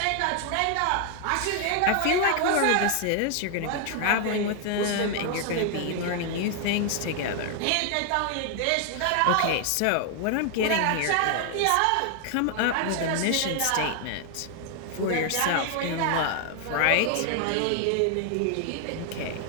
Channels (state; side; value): different; both; correlation 0.00